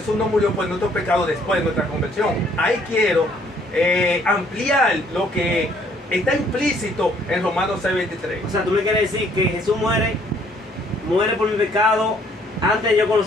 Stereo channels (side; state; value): both; normal; correlation 0.63